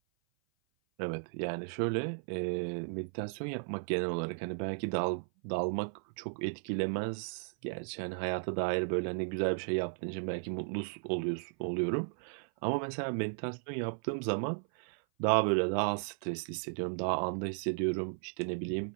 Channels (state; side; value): silent; left; 54 dB below the other